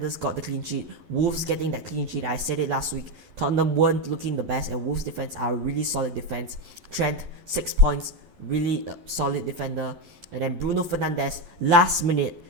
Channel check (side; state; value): left; late; 11 ms